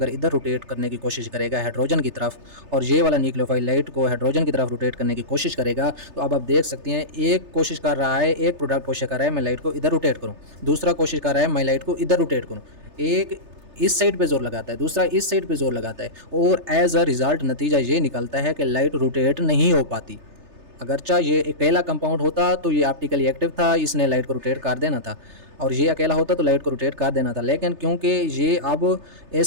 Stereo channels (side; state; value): left; late; 3.3 ms